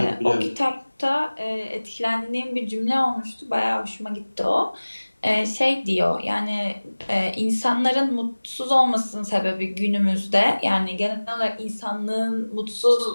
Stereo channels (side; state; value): both; inverted; correlation -1.00